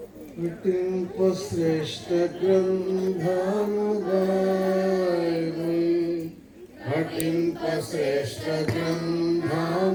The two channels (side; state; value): both; identical; correlation 1.00